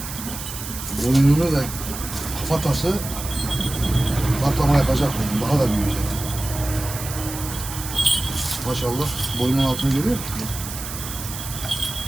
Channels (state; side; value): noise; right; hiss, 9 dB below the sound